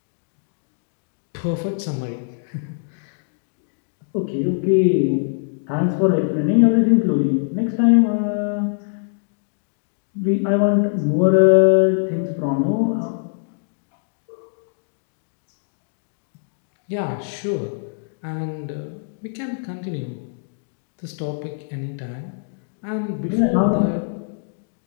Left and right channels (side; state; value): right; silent; digital silence